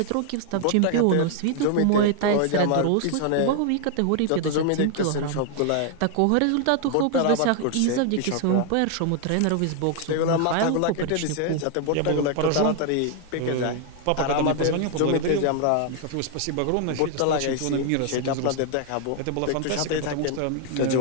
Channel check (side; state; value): both; different; correlation 0.00